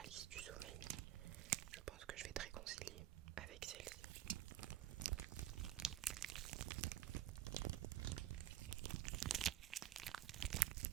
du sommeil, je pense que je vais te réconcilier avec celle-ci.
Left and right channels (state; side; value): quieter; left; 12.9 dB